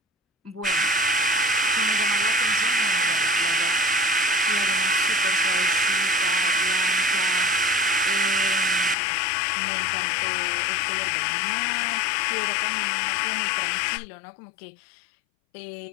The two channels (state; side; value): drops out; right; at 9.0 s